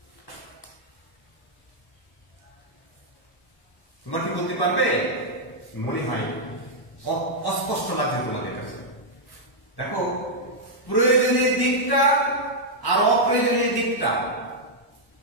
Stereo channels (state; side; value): late; right; 1.1 ms